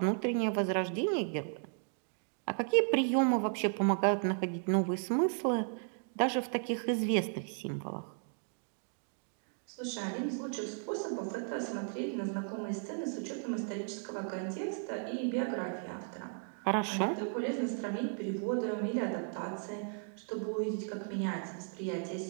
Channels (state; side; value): silent; left; 54 dB below the other